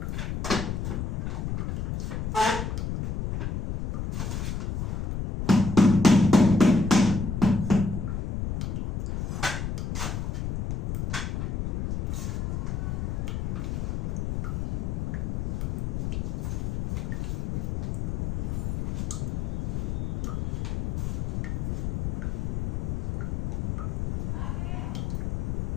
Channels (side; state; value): left; noise; rumble, 2 dB below the sound